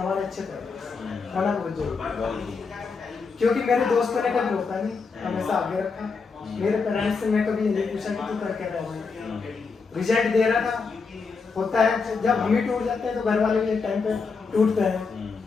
अच्छे पेरेंट्स होना बहुत जरूरी है। क्योंकि मेरे दोस्तों ने कभी रोका नहीं, हमेशा आगे रखा। मेरे पेरेंट्स से मैं कभी ये नहीं पूछा कि तू कर क्या रहा है, रिजल्ट दे रहा था। होता है जब हम ही टूट जाते हैं तो घर वाले भी एक टाइम पे टूटते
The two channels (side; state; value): right; quieter; 4.8 dB